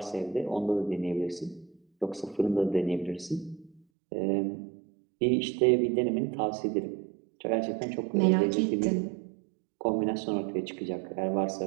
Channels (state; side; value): drops out; left; at 3.8 s